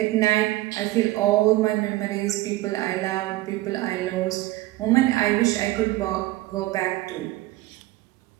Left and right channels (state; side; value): quieter; left; 17.6 dB